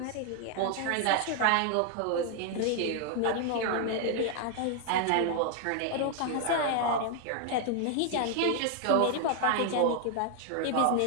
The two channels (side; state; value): both; different; correlation 0.00